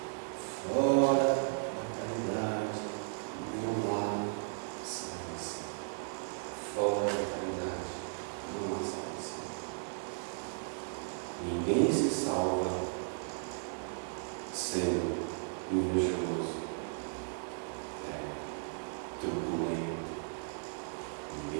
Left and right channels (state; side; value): silent; left; digital silence